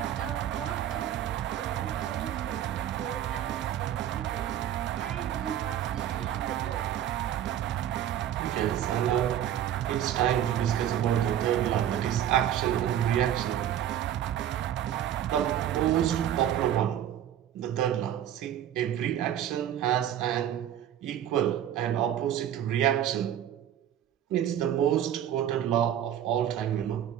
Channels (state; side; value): quieter; left; 10.8 dB